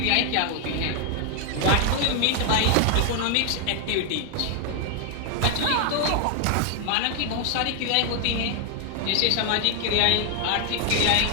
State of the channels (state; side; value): different; both; correlation 0.00